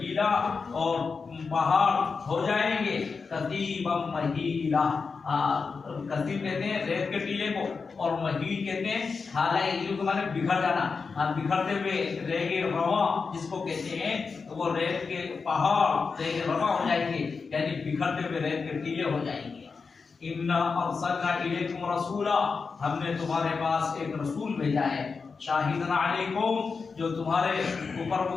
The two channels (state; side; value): quieter; right; 4.9 dB